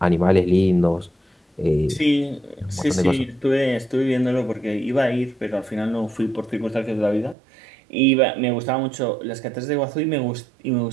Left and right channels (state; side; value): drops out; left; at 7.4 s